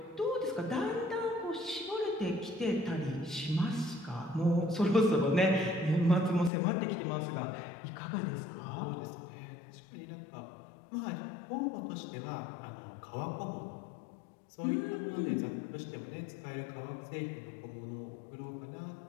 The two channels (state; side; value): drops out; right; at 6.5 s